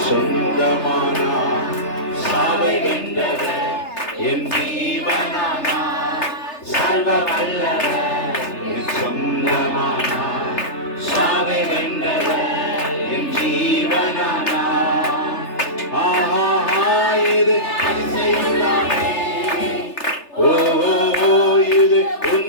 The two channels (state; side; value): late; right; 3.3 ms